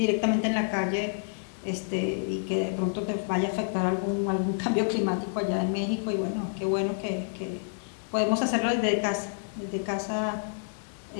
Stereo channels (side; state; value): right; silent; digital silence